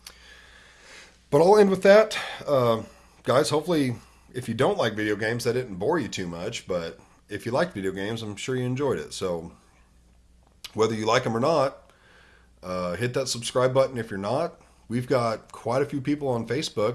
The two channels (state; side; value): identical; both; correlation 1.00